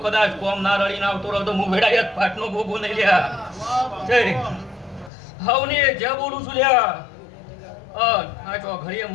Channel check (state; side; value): drops out; right; at 5.1 s